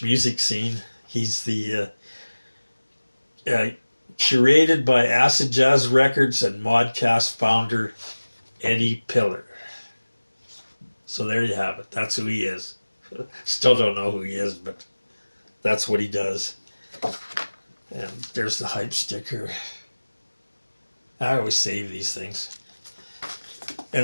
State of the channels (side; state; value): both; inverted; correlation -1.00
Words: music scene. He's the curated by Acid Jazz Records and Modcast founder Eddie Pillar. So there you have it. That's who he is. Still don't know who he is, but that's what he does. And there's the hype sticker. I always save these things.